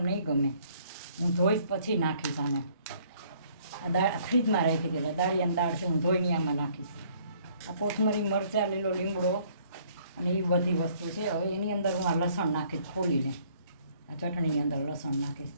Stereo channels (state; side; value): inverted; both; correlation -0.62